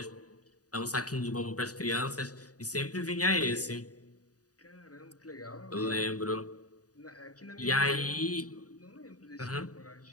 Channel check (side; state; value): right; late; 0.67 ms